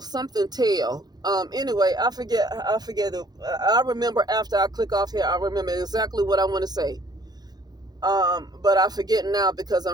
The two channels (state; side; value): late; left; 0.19 ms